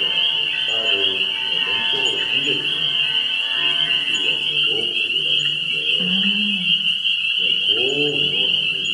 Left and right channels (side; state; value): both; identical; correlation 1.00